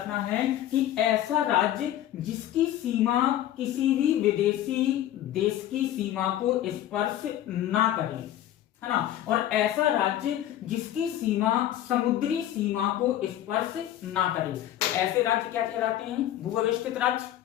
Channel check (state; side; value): quieter; right; 12.4 dB